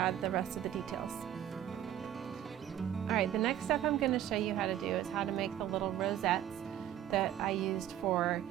the rest of the details. Alright, the next step I'm going to show you how to do is how to make the little rosettes that I used for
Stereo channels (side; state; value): left; quieter; 11.4 dB